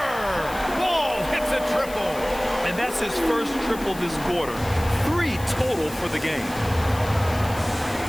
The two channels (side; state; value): left; noise; hiss, 16 dB below the sound